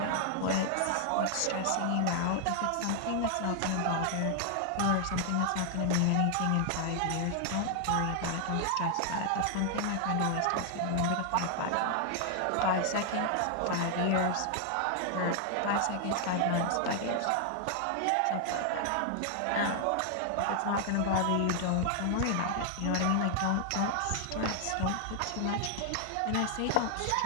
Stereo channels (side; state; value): both; different; correlation 0.00